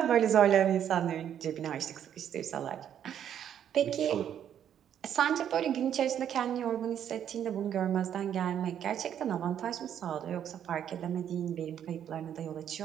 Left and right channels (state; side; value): quieter; left; 9.6 dB